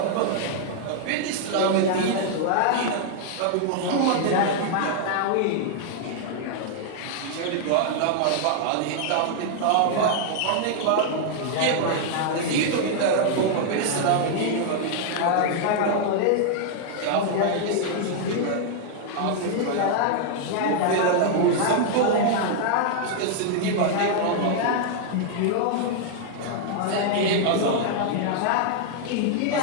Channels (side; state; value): both; different; correlation -0.01